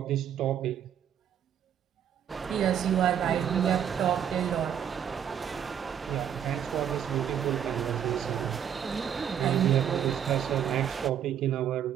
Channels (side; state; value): left; quieter; 9.0 dB